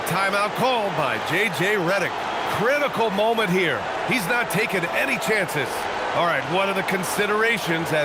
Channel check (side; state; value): both; identical; correlation 1.00